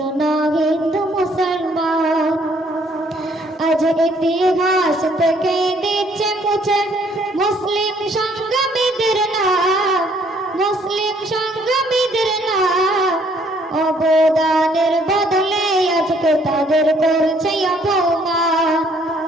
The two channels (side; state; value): both; normal; correlation 0.64